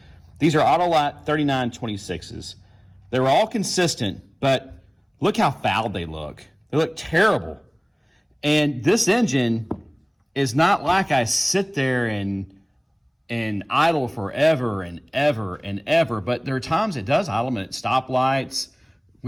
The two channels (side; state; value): both; identical; correlation 1.00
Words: These are Autolite 3926s. They're all consistent, but look how fouled they look. They look terrible. And this engine is not like I sit there and idle forever and ever and ever, but there are times it does idle at stoplights.